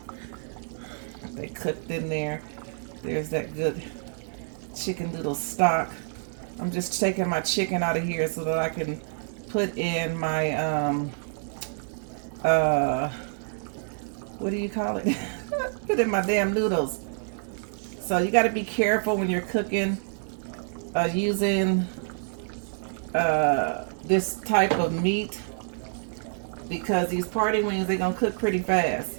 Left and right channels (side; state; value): left; silent; digital silence